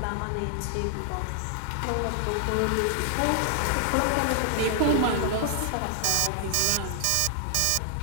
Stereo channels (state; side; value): different; both; correlation 0.00